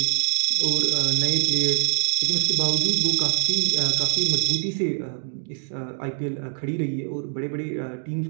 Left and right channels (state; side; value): silent; left; digital silence